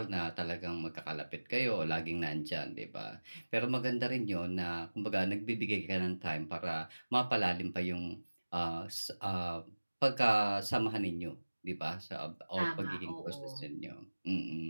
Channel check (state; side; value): inverted; both; correlation -1.00